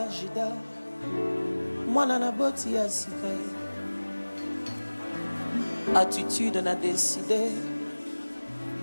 Judas, mwana na boti ya sika attitude na décidé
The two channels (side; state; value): both; inverted; correlation -1.00